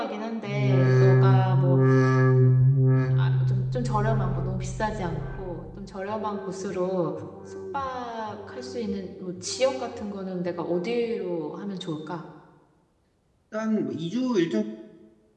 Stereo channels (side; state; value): both; identical; correlation 1.00